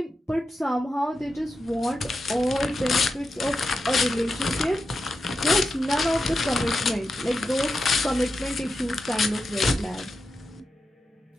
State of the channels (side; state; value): both; normal; correlation 0.89